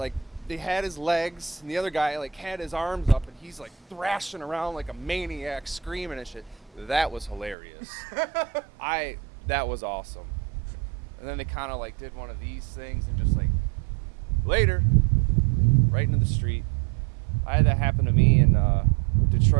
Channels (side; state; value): left; drops out; at 7.6 s